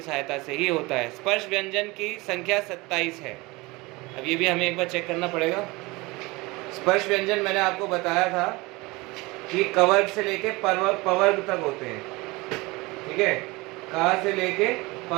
सहायता से ही होता है। स्पर्श व्यंजन की संख्या 27 है। अब ये भी हमें एक बार चेक करना पड़ेगा। स्पर्श व्यंजन मैंने आपको बताया था कि कवर्ग से लेके पवर्ग तक होते हैं। ठीक है, का से लेके प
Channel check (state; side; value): quieter; left; 23.4 dB